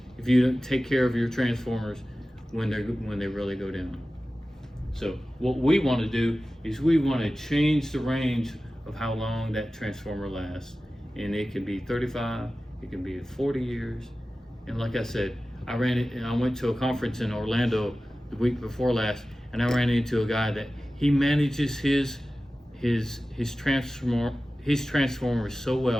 if you don't take care of your transformers when they really go down. So what we want to do is we want to change the range of how long that transformer lasts. And it can be 35, it can be 40 years. And like I said, I went to a conference in Orlando the week before last, and I ran into a guy that he manages his transformers so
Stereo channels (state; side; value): normal; both; correlation 0.95